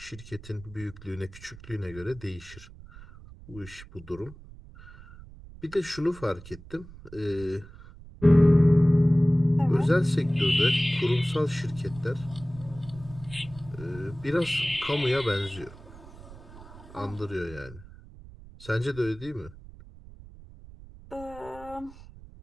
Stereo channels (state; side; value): noise; right; rumble, 18 dB below the sound